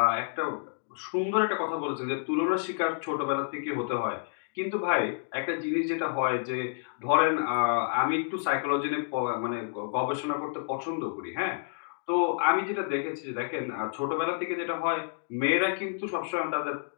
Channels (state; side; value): silent; right; digital silence